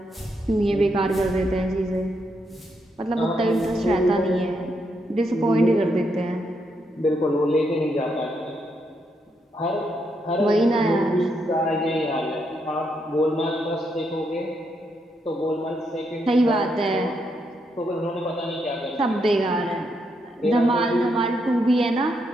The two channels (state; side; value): normal; both; correlation 0.79